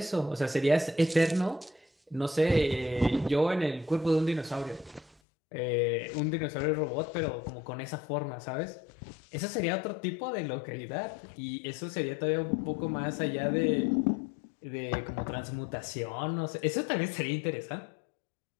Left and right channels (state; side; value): drops out; right; at 5.2 s